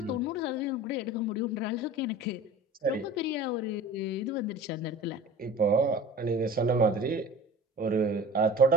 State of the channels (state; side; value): normal; both; correlation 0.39